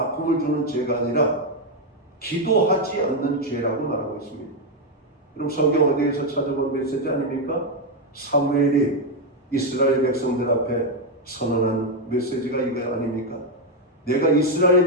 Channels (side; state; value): both; normal; correlation 0.03